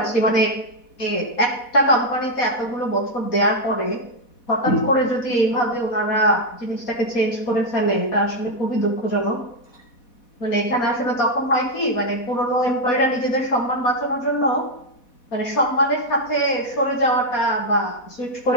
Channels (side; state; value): right; late; 4.1 ms